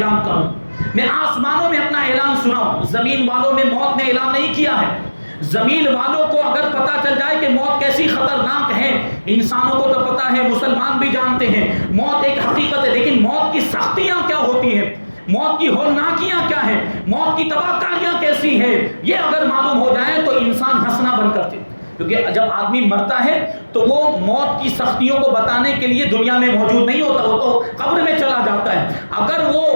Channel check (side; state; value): both; inverted; correlation -1.00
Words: کروں، میں آسمانوں میں اپنا اعلان سناؤں. زمین والوں میں موت نے اعلان نہیں کیا ہے. زمین والوں کو اگر پتہ چل جائے کہ موت کیسی خطرناک ہے، انسانوں کو تو پتہ ہے، مسلمان بھی جانتے ہیں موت ایک حقیقت ہے، لیکن موت کی سختیاں کیا ہوتی ہیں، موت کی ہولناکیاں کیا ہیں، موت کی تباہ کاریاں کیسی ہیں، یہ اگر معلوم ہو جائے تو انسان ہنسنا بند کرتے. کیونکہ جب آدمی مرتا ہے تو وہ موت کی سختیوں کو بتانے کے لیے دنیا میں موجود نہیں ہوتا، وہ تو قبر میں چلا جاتا ہے. اگر وہ